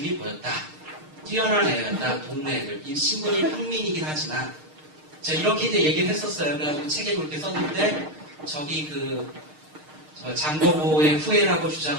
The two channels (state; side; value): late; left; 6.5 ms